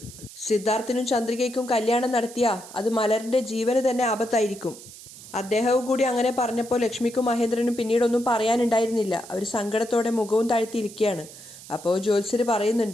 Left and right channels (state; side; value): noise; right; hiss, 17 dB below the sound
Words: സിദ്ധാർത്ഥിനും ചന്ദ്രികയ്ക്കും കല്യാണം നടത്തിയാൽ അത് മലറിൻ്റെ ജീവന് തന്നെ ആപത്തായിരിക്കും. അദ്ദേഹവും കൂടി അങ്ങനെ പറഞ്ഞപ്പോൾ ലക്ഷ്മിക്കും മഹേന്ദ്രനും പിന്നീടൊന്നും പറയാനുണ്ടായിരുന്നില്ല. അവർ സങ്കടത്തോടെ മുഖവും താഴ്ത്തിയിരിക്കുകയാണ്. അപ്പോൾ ജ്യോത്സ്യർ